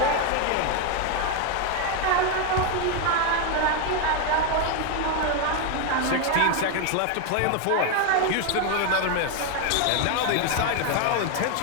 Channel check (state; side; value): different; both; correlation 0.01